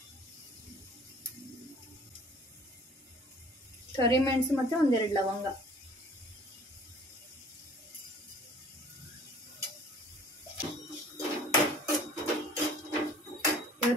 ಕರಿಮೆಣಸು ಮತ್ತು 1-2 ಲವಂಗ.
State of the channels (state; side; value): normal; both; correlation 0.51